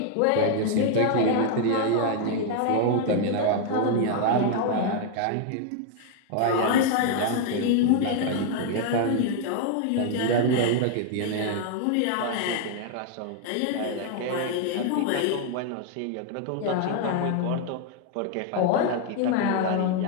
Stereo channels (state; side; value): different; both; correlation 0.00